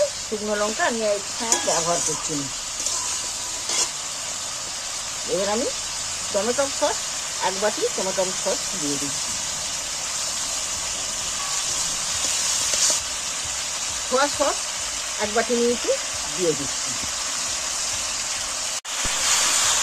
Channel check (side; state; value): both; identical; correlation 1.00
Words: শুকনো লঙ্কা আমি এখানে ব্যবহার করছি না। এবার আমি টমেটো সস, এক বাটি টমেটো সস দিয়ে দিচ্ছি। সোয়া সস এক বাটি নিয়েছি, দিয়ে দিচ্ছি।